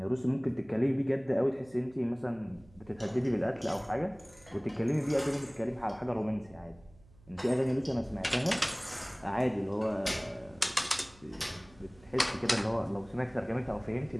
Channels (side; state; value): right; noise; hum, 26 dB below the sound